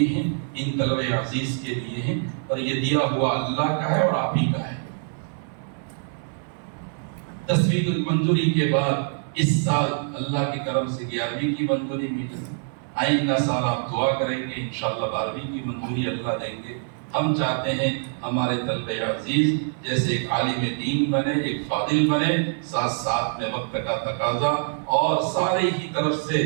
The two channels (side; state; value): left; silent; 61 dB below the other